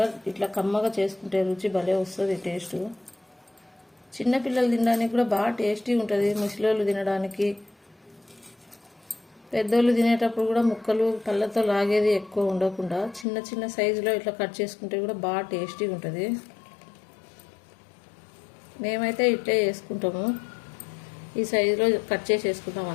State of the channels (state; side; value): drops out; right; at 13.2 s